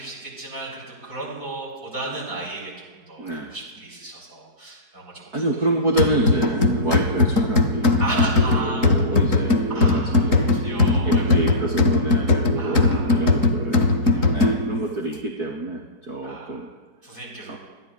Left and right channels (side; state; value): left; late; 4.7 ms